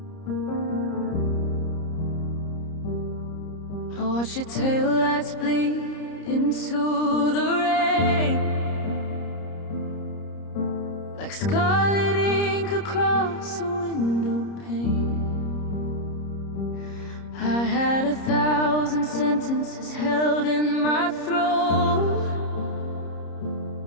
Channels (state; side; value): late; right; 30 ms